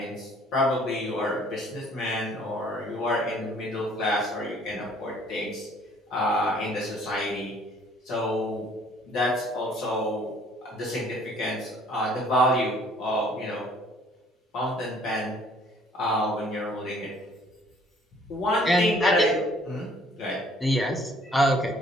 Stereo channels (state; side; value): normal; both; correlation 0.58